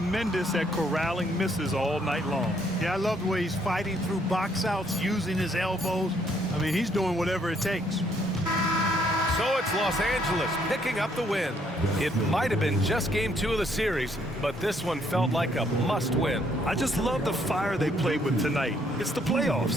at corralling misses all night long. Yeah, I love the way he's fighting through box outs, using his elbows. I mean, he's doing whatever it takes. So it's Los Angeles picking up the win. It might have been just game 2 of the series, but this one felt like a must-win. I just love the fire they played with tonight. It's the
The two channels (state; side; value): normal; both; correlation 0.68